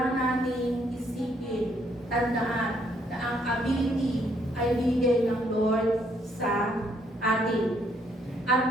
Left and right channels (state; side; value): normal; both; correlation 0.70